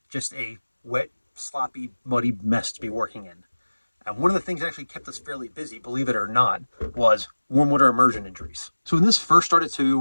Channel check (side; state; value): both; inverted; correlation -1.00